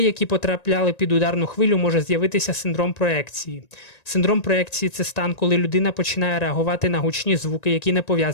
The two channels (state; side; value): late; right; 1.9 ms